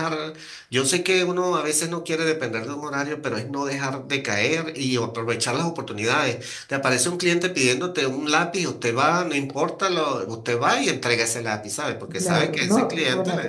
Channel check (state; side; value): identical; both; correlation 1.00